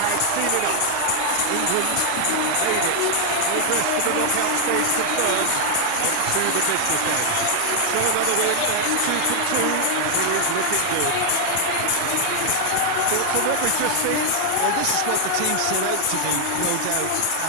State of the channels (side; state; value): both; different; correlation 0.00